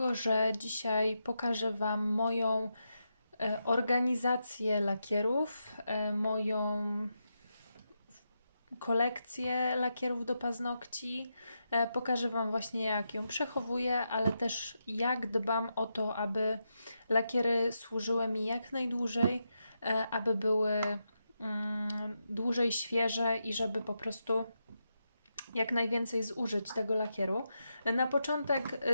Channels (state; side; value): inverted; both; correlation -0.85